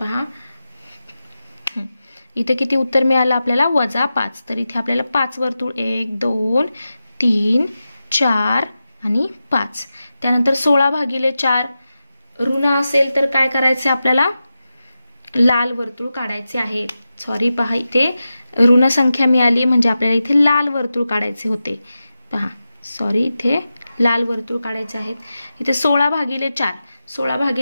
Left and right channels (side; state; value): both; inverted; correlation -0.92